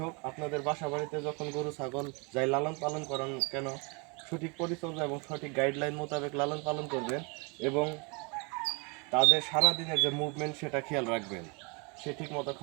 হোক, আপনাদের বাসা বাড়িতে যখন গরু ছাগল যাই লালন পালন করেন কেন, সঠিক পরিচর্যা এবং সঠিক গাইডলাইন মোতাবেক লালন পালন করবেন এবং তাদের সারাদিনের যে মুভমেন্ট সেটা খেয়াল রাখবেন। সে ঠিক মতো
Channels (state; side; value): quieter; left; 31.8 dB